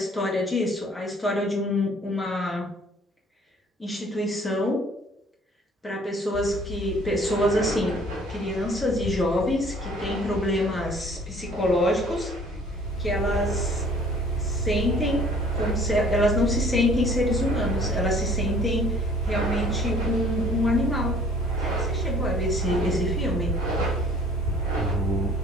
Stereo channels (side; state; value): both; normal; correlation 0.54